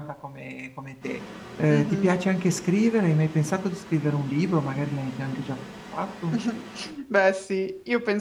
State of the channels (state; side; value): identical; both; correlation 1.00